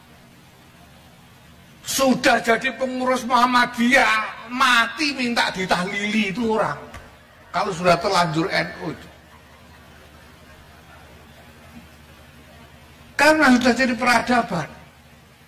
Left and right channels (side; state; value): both; identical; correlation 1.00